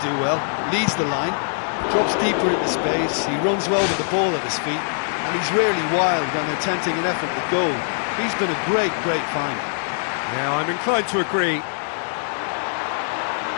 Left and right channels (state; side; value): silent; right; digital silence